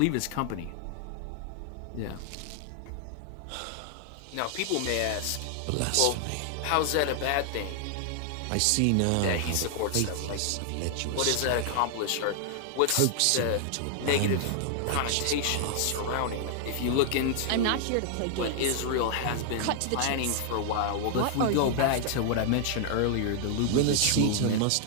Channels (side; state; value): both; different; correlation 0.00